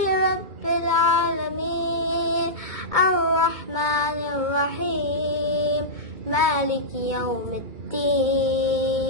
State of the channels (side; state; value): left; late; 2.2 ms